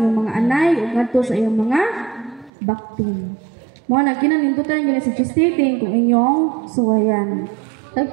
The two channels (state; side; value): drops out; left; at 2.5 s